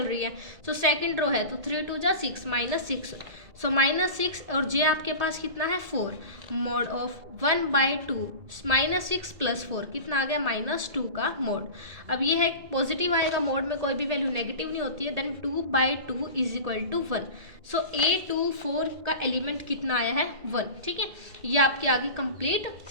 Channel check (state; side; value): late; left; 1.8 ms